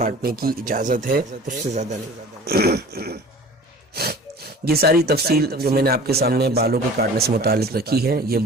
کی اجازت ہے، اس سے زیادہ نہیں۔ یہ ساری تفصیل جو میں نے آپ کے سامنے بالوں کے کاٹنے سے متعلق رکھی ہے، یہ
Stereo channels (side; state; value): both; normal; correlation 0.43